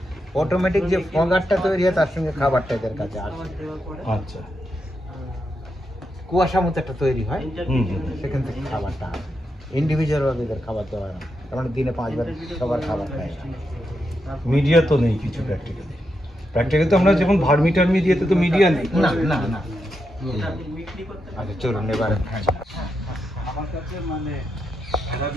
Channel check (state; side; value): normal; both; correlation 0.84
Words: অটোমেটিক যে ফগারটা তৈরি হয় তার সঙ্গে খাবারটা এদের কাছে আসে। আচ্ছা, কুয়াশা মতো একটা তৈরি হয়, সেখান থেকে খাবারটা আসে। ইন্ডিভিজুয়াল ভাবে এদের খাবার দেওয়া হয় না, তার মানে দিনে 5 বার সবার খাবার খায়। মিডিয়া তো নেই কিছু প্র্যাকটিক্যালি তো আমরা যেমন ভার্মি টার্মি দিয়েতে তো মিডিয়া নেই। না না না। আচ্ছা, চলুন এবার আমার কাছে মানে